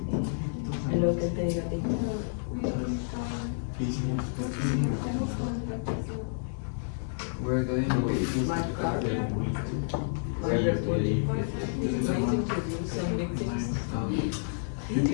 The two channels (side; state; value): right; silent; digital silence